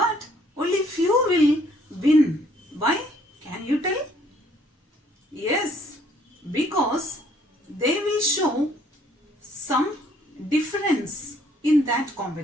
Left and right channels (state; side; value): normal; both; correlation 0.63